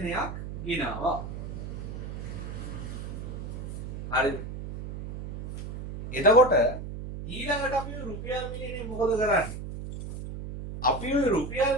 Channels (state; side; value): noise; right; hum, 8 dB below the sound